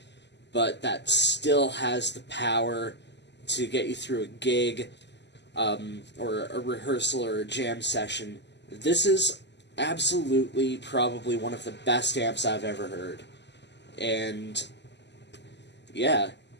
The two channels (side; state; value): right; late; 0.50 ms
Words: but that still has the power to get you through a gig, or a rehearsal or a jam session, this is absolutely probably one of the best amps I've ever heard. And yeah,